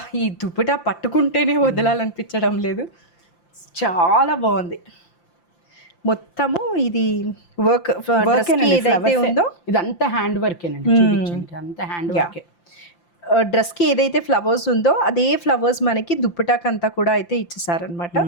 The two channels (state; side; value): late; right; 5.8 ms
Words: ఈ దుపట్టా పట్టుకుంటేనే వదలాలనిపించడం లేదు. చాలా బాగుంది. మొత్తము ఇది వర్క్ ఏదైతే ఉందో ఇదంతా హ్యాండ్ వర్కేనండి, చూపించండి అంతా హ్యాండ్ వర్కే. డ్రెస్కి ఏదైతే ఫ్లవర్స్ ఉందో అదే ఫ్లవర్స్ మనకి దుప్పటాక్ అంతా కూడా అయితే ఇచ్చేసారనమాట.